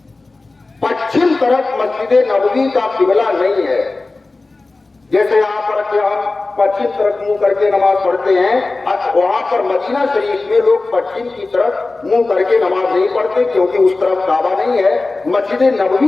پچھم طرف مسجد نبوی کا قبلہ نہیں ہے۔ جیسے یہاں پر کہ ہم پچھم طرف منہ کر کے نماز پڑھتے ہیں، وہاں پر مدینہ شریف میں لوگ پچھم کی طرف منہ کر کے نماز نہیں پڑھتے، کیونکہ اس طرف کعبہ نہیں ہے۔ مسجد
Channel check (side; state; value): right; quieter; 3.4 dB